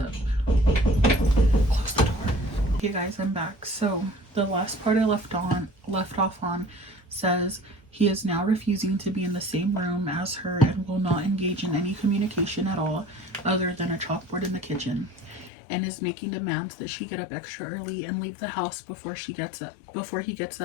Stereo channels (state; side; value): drops out; right; at 15.5 s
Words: Close the door. Okay guys, I'm back. So the last part I left off on says he is now refusing to be in the same room as her and will not engage in any communication at all other than a chalkboard in the kitchen, and is making demands that she get up extra early and leave the house before he gets